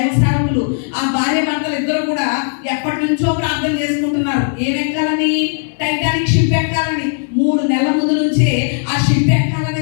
సేవకులు. ఆ భార్య భర్తలు ఇద్దరు కూడా ఎప్పటి నుంచో ప్రార్థన చేసుకుంటున్నారు. ఏం ఎక్కాలని? Titanic ship ఎక్కాలని. 3 నెలల ముందు నుంచే ఆ షిప్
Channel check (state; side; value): silent; right; 60 dB below the other